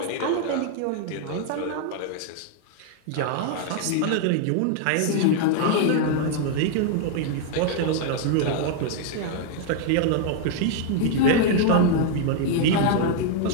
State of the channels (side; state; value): both; different; correlation 0.00